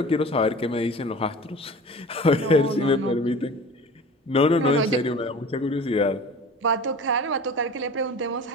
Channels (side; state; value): both; normal; correlation 0.39